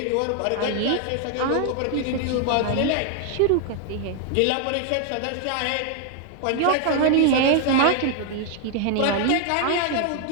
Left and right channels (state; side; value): different; both; correlation 0.00